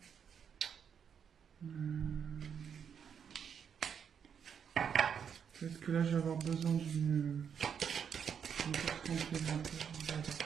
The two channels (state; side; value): quieter; left; 7.5 dB